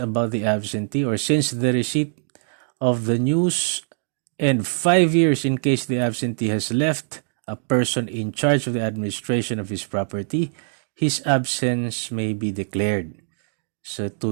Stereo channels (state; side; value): silent; left; digital silence